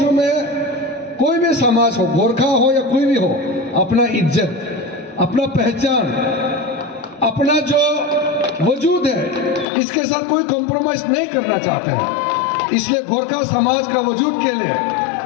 में कोई भी समाज हो, गोरखा हो या कोई भी हो, अपना इज्जत, अपना पहचान, अपना जो वजूद है, इसके साथ कोई कॉम्प्रोमाइज नहीं करना चाहते हैं। इसलिए गोरखा समाज का वजूद के लिए,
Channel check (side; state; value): right; drops out; at 9.7 s